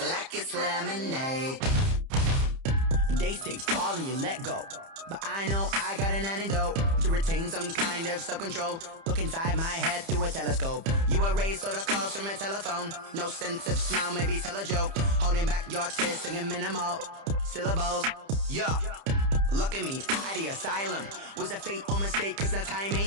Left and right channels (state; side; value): late; left; 30 ms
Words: it's lemonade. They say fall and you let go, but I know I got an antidote to retain some kind of self-control. Look inside my head through a telescope. You erase all the calls from a telephone. No sense of smile, maybe tell a joke. Holding back your tears, singing minimal syllables. Yeah, look at me, at the asylum. Was a fate or mistake, cause the time